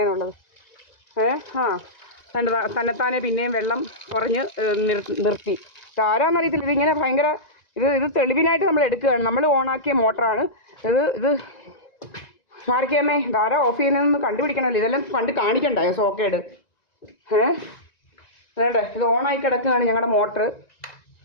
തന്നെത്താനെ പിന്നെയും വെള്ളം കുറഞ്ഞ് നിർത്തി. ഇതാരാന്നറിയത്തില്ല. ഇതിങ്ങനെ ഭയങ്കര ഇത് തെളിവിനായിട്ട് നമ്മൾ എടുക്കുകയാണ്. നമ്മൾ ഓണാക്കിയ മോട്ടറാണ് ഇത് മാറിക്കമ്മേ. ഇതാരാ ഓഫ് ചെയ്യുന്നതെന്ന് കണ്ടുപിടിക്കണമല്ലോ. ഇതെല്ലാം കണ്ട് കാണിക്കണ്ടായോ സോക്കേട്? അതേടെ ഇത് ഓണായി കിടക്കുകയാണ് ഞങ്ങളുടെ മോട്ടർ.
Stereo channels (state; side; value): late; right; 1.9 ms